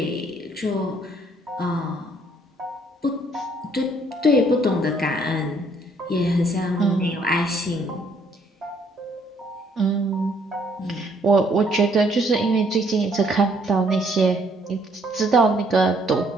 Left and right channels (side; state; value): both; normal; correlation 0.65